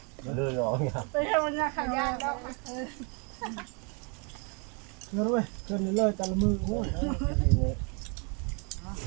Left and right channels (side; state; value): left; quieter; 35.1 dB